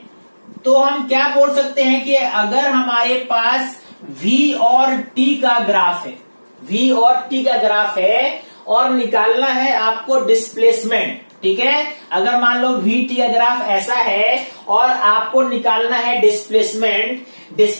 तो हम क्या बोल सकते हैं कि अगर हमारे पास V और T का ग्राफ है, V और T का ग्राफ है और निकालना है आपको डिस्प्लेसमेंट, ठीक है। अगर मान लो VT का ग्राफ ऐसा है और आपको निकालना है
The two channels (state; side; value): inverted; both; correlation -1.00